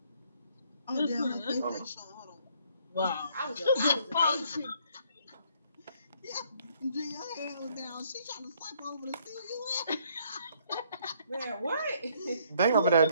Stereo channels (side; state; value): both; inverted; correlation -0.66